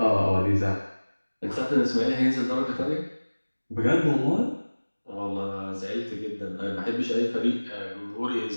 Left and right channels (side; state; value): both; inverted; correlation -1.00